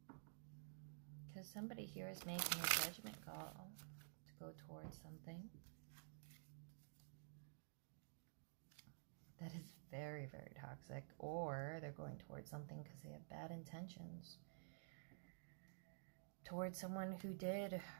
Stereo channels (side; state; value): left; silent; digital silence